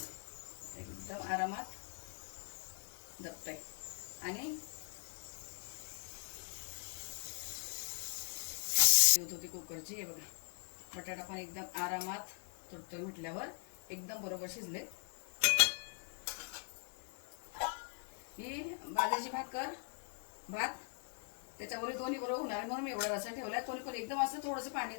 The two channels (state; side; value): silent; right; 51 dB below the other